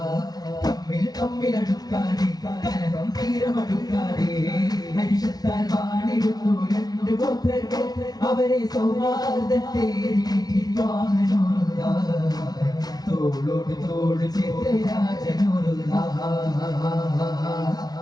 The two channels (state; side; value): late; right; 0.19 ms